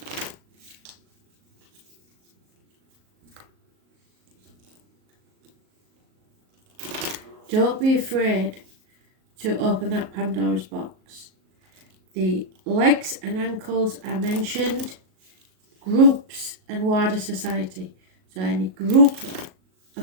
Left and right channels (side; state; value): left; late; 38 ms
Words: Don't be afraid to open that Pandora's box. The legs and ankles are mentioned. Groups and wider society. So any group